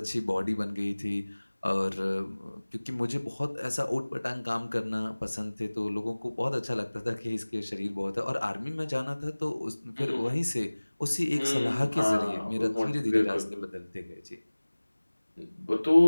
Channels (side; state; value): both; inverted; correlation -1.00